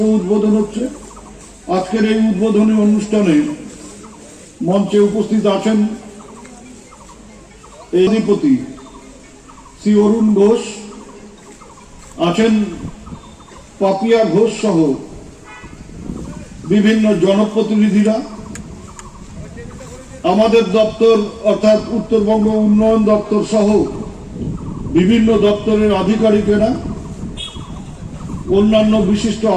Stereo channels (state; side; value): identical; both; correlation 1.00